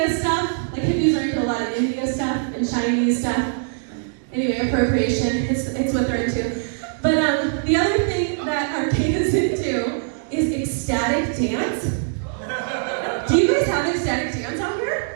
stuff, like hippies are into a lot of India stuff and Chinese stuff. Anyway, appropriation, it's what they're into. But the other thing that Arcata's into is ecstatic dance. Do you guys have ecstatic dance out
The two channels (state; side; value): silent; left; digital silence